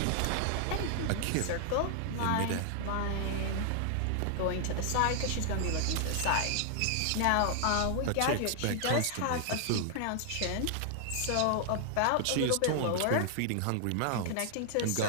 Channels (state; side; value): different; both; correlation 0.00